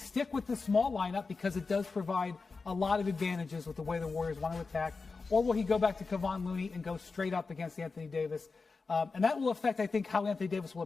with the small lineup because it does provide a lot of advantages with the way the Warriors want to attack, or will he go back to Kevon Looney and go straight up against Anthony Davis? And that will affect, I think, how Anthony Davis will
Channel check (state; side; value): quieter; right; 4.3 dB